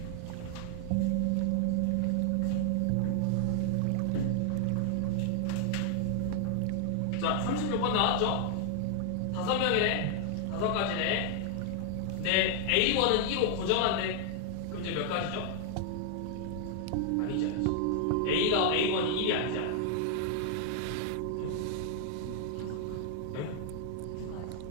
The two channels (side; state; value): both; different; correlation 0.00